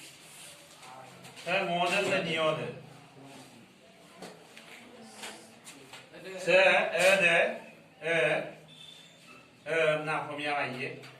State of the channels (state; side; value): identical; both; correlation 1.00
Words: সে নিয়দ সে না কমিয়া আইয়ে